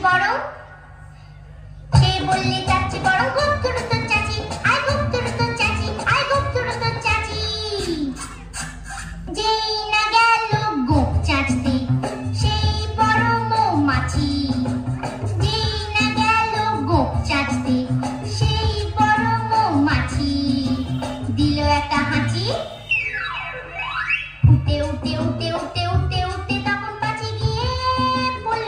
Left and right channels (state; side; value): identical; both; correlation 1.00